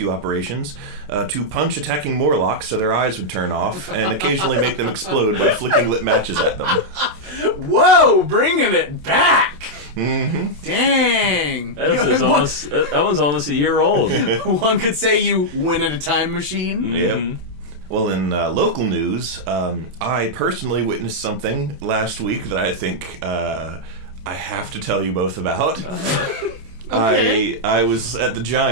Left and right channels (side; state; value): left; late; 27 ms